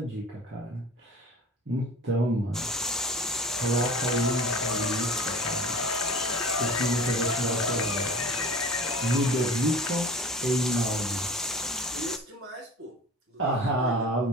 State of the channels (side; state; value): both; normal; correlation 0.41